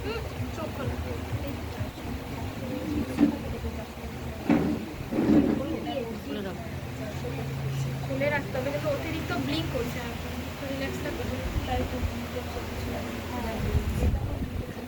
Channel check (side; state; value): both; identical; correlation 1.00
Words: চোখ খোলা খুলে রাখতে হবে, কিন্তু অতিরিক্ত ব্লিঙ্ক করছে, রিল্যাক্সটা করবে তাই তো।